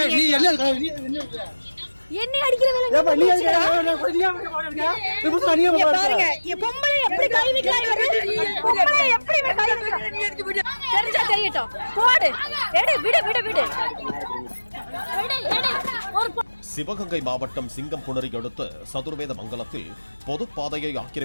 என்ன அடிக்கிற வேலை பாருங்க. பொம்பளை எப்படி கை வைக்கலாம், பொம்பளை எப்படி கை வைக்கலாம் தெரிஞ்சா தெரியட்டும். போடு, எடு, விடு விடு விடு. சிவகங்கை மாவட்டம் சிங்கம்புணரி அடுத்த சதுர்வேத மங்கலத்தில் பொதுப்பாதையை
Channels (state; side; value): inverted; both; correlation -1.00